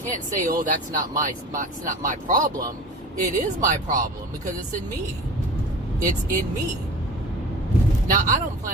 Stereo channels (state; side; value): normal; both; correlation 0.37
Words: say, oh, it's not my problem. It is my problem, because it's in me. It's in me. Now, I don't